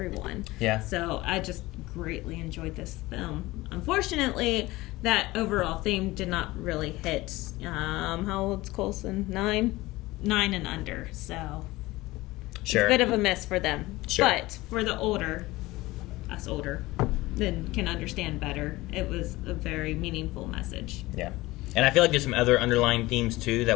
Yeah. So I just greatly enjoyed this film. Unfortunately, that overall theme did not really hit. How old's Coulson? 9 and under. So sure, it's a bit of a miss for them. Sure. But for the older, then can understand better. It was a very meaningful message. Yeah. And I feel like there's some other underlying themes too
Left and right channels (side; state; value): right; quieter; 19.4 dB